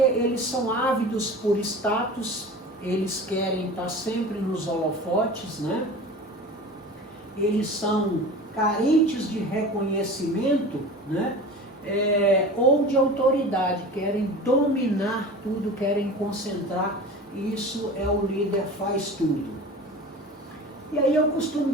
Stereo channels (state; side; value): normal; both; correlation 0.36